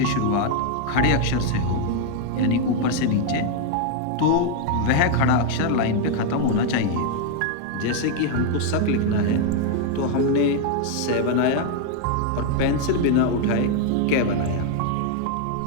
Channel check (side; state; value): both; different; correlation 0.01